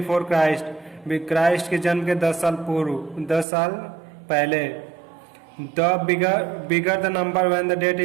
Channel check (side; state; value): left; drops out; at 3.5 s